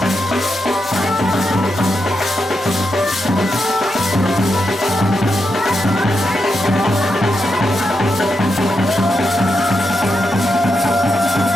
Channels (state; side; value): normal; both; correlation 0.85